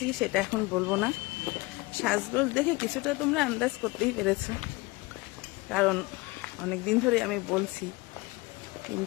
সেটা এখন বলবো না, সাজগোজ দেখে কিছুটা তোমরা আন্দাজ করতেই পেরেছ, কারণ অনেকদিন ধরে আমি বলছি,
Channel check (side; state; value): right; quieter; 23.3 dB